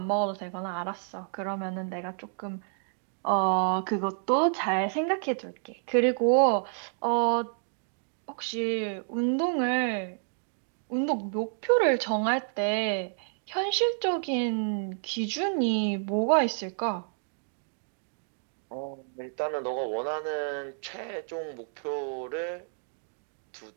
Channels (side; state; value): left; silent; digital silence